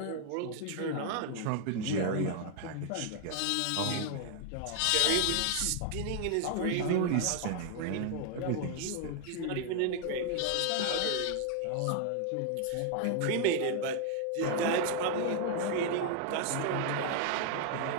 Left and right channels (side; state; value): both; different; correlation 0.00